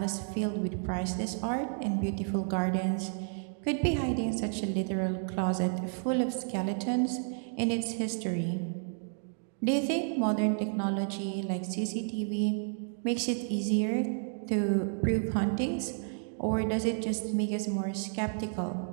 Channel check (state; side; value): silent; left; 57 dB below the other